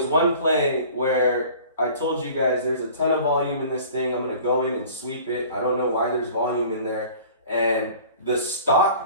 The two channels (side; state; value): both; inverted; correlation -0.46